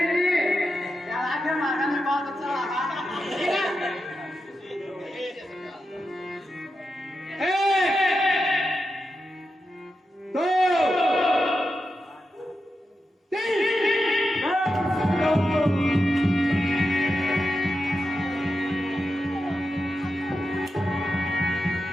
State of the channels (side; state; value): both; normal; correlation 0.89